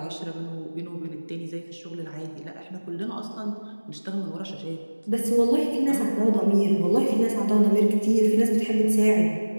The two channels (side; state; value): both; inverted; correlation -1.00